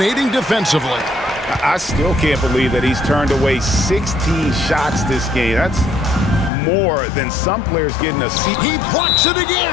defensively. I still can't believe that he's turned away 16 shots this game. That's more than some players getting a seat. He blocks it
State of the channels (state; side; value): drops out; right; at 6.5 s